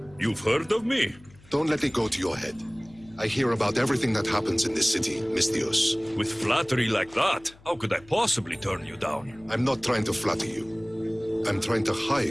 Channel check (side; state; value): left; noise; hum, 25 dB below the sound